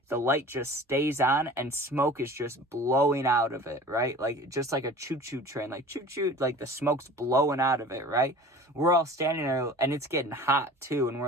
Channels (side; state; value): both; normal; correlation 0.42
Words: the light just stays on and smoke is just blowing out of it, right? Just like a choo-choo train, choo-choo, the smoke's blowing out of it, right? We're all standing there and it's getting hot too. And